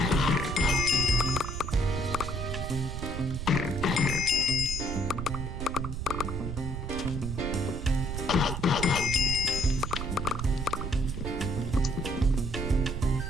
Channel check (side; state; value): right; noise; rumble, 4 dB below the sound